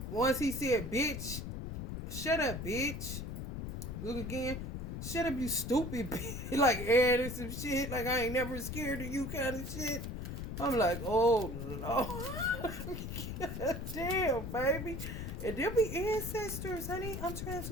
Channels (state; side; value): noise; left; rumble, 6 dB below the sound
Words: Once he said, bitch, shut up, bitch. Look again. Shut up, you stupid bitch. Like, adding some shit. Like, I ain't never scared of you kind of shit. I'm like, oh, Lord. Damn, baby. And there be ancestors, honey. I'm trying